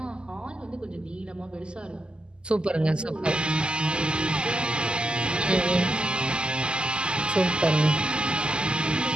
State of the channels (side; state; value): left; late; 0.049 ms